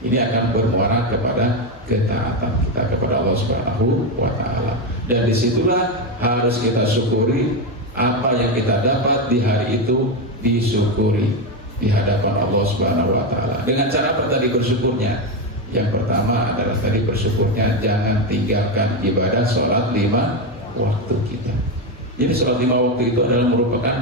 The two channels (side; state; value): both; normal; correlation 0.11